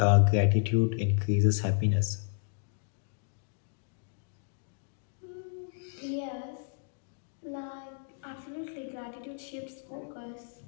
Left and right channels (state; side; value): silent; right; digital silence